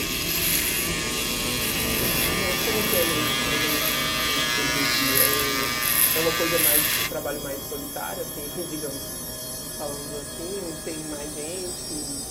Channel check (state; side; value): identical; both; correlation 1.00